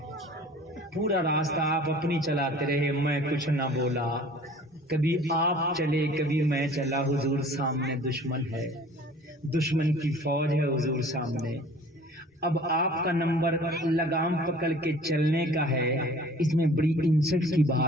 پورا راستہ آپ اپنی چلاتے رہے، میں کچھ نہ بولا. کبھی آپ چلے کبھی میں چلا. حضور سامنے دشمن ہے، دشمن کی فوج ہے حضور سامنے. اب آپ کا نمبر لگام پکڑ کے چلنے کا ہے. اس میں بڑی انسٹ کی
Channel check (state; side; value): normal; both; correlation 0.48